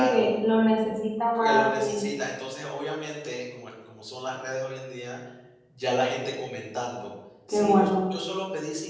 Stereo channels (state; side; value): identical; both; correlation 1.00